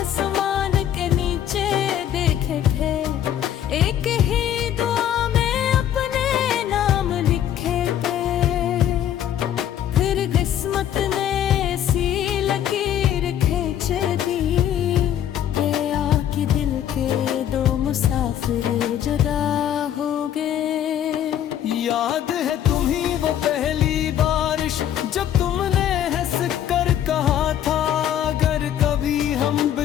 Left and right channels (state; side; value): quieter; right; 10.6 dB